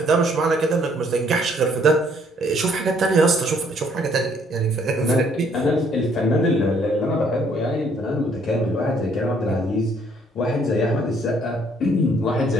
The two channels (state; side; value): normal; both; correlation 0.65